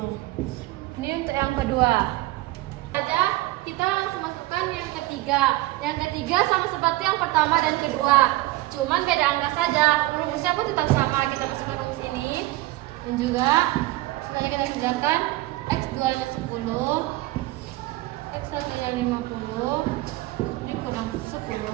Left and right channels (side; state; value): left; quieter; 18.8 dB